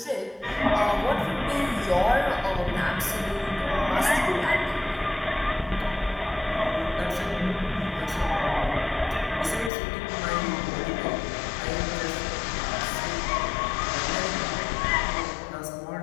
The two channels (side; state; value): right; drops out; at 9.7 s